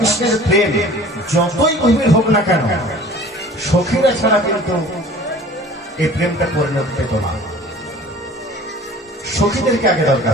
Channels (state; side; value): normal; both; correlation 0.46